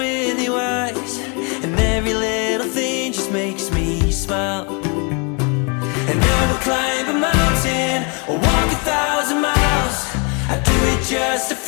your eyes, and every little thing just makes me smile. And I will climb a mountain or walk 1,000 miles. I do it just to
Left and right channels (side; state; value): right; quieter; 34.3 dB